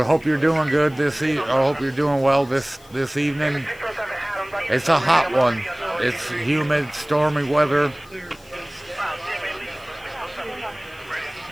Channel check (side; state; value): left; noise; hiss, 26 dB below the sound